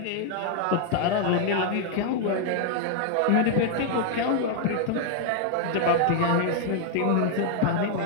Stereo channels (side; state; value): both; different; correlation 0.00